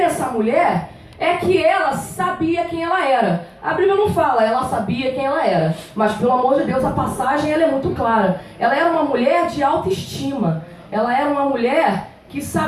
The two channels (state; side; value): identical; both; correlation 1.00